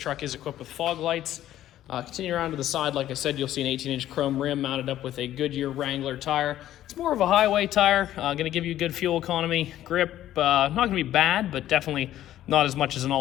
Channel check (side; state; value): right; quieter; 12.8 dB